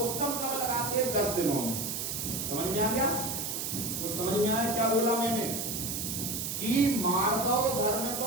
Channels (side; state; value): right; noise; hiss, 3 dB below the sound